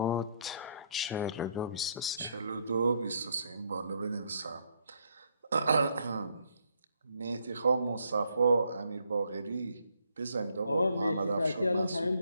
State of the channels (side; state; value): both; inverted; correlation -0.71